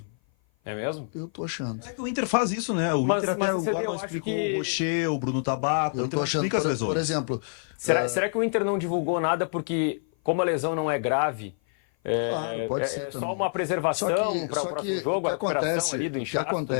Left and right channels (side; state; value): right; silent; 56 dB below the other